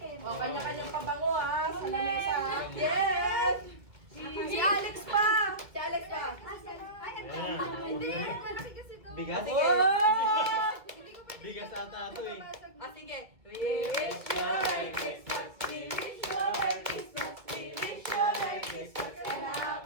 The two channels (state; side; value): late; left; 2.2 ms